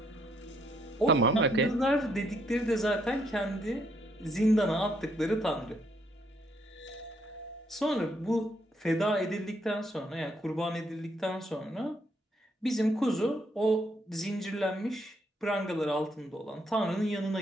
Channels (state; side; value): normal; both; correlation 0.72